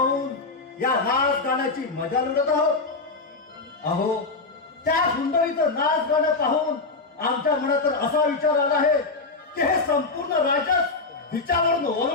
या नाच गाण्याची मजा लुटत आहोत. अहो त्या सुंदरीचं नाच गाणं पाहून आमच्या मनात तर असा विचार आला आहे की हे संपूर्ण राज्यात हिच्यावरून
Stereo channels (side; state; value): right; quieter; 3.9 dB